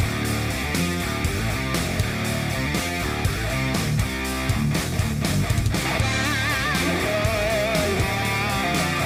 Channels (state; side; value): identical; both; correlation 1.00